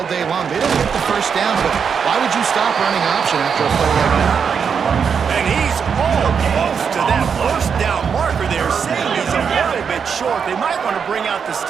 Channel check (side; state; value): left; quieter; 6.6 dB